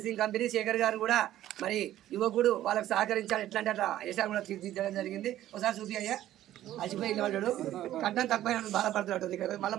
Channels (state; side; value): quieter; left; 13.2 dB